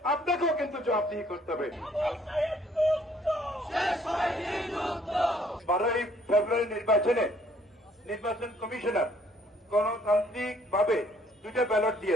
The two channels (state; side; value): normal; both; correlation 0.62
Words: আপনাকেও কিন্তু জবাবদিহি করতে হবে। 12ই ফেব্রুয়ারি নির্বাচনে নির্বাচন কমিশনার গণতান্ত্রিক ভাবে 2টা ব্যালট